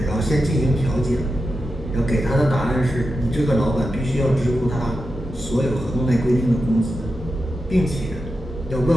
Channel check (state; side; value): normal; both; correlation 0.90